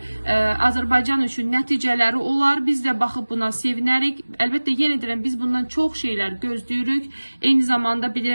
Azərbaycan üçün nəticələri olar. Biz də baxıb buna sevinərik. Əlbəttə, yenə deyirəm, biz bundan çox şeylər gözləyirik. Eyni zamanda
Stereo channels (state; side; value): inverted; both; correlation -1.00